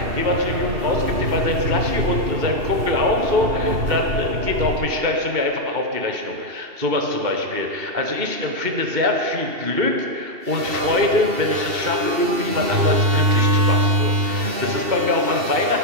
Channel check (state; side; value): late; left; 2.7 ms